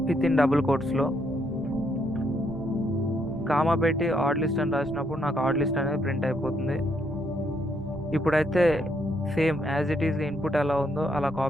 విత్ ఇన్ డబుల్ కోట్స్లో. కామా పెట్టి ఆడ్ లిస్ట్ అని రాసినప్పుడు నాకు ఆడ్ లిస్ట్ అనేది ప్రింట్ అయిపోతుంది. ఇప్పుడైతే same as it is input ఎలా ఉందో అలా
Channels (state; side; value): normal; both; correlation 0.74